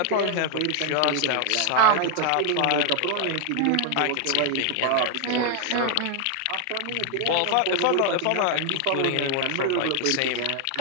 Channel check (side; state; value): both; different; correlation 0.00